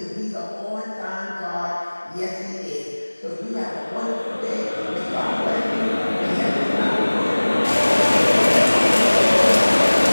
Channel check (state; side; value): inverted; both; correlation -1.00